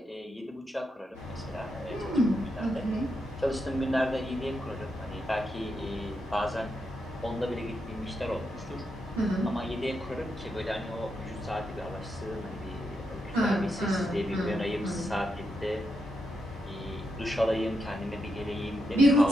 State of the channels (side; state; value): both; normal; correlation 0.83